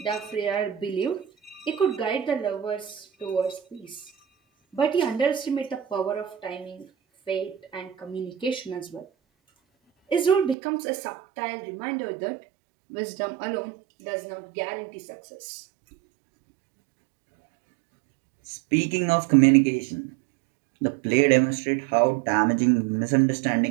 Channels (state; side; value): drops out; left; at 10.6 s